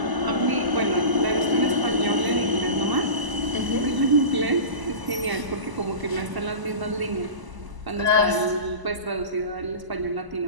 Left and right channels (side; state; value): left; late; 1.0 ms